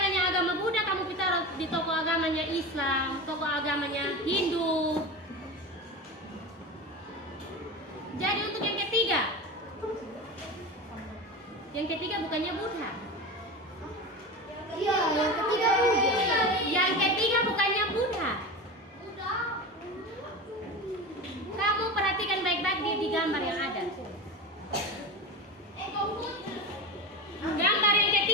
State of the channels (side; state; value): both; normal; correlation 0.26